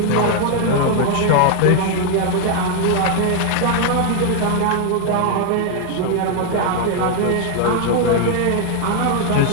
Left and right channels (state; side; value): different; both; correlation 0.00